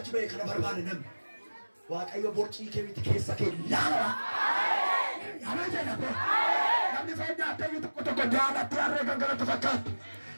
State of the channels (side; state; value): both; inverted; correlation -1.00